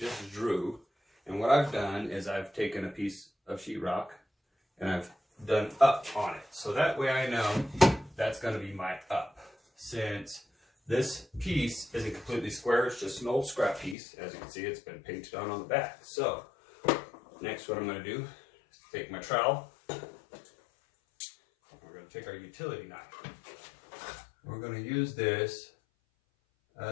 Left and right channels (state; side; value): drops out; right; at 14.0 s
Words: drew. And what I've done is I've taken a piece of sheetrock and I've done up on it. So that way I know that's going to be my up. Since this piece isn't completely square, it's just an old scrap piece. As you can see, it's been painted on the back. So next, what I'm going to do is take my trowel. We're going to take our utility knife. We're going to use this